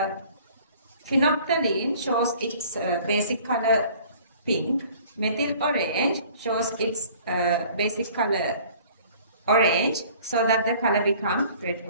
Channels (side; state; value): both; inverted; correlation -0.52